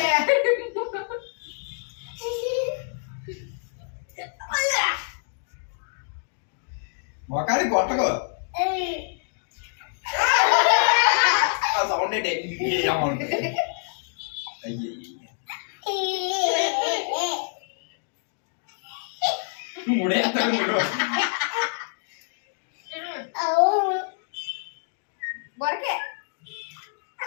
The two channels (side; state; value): right; silent; digital silence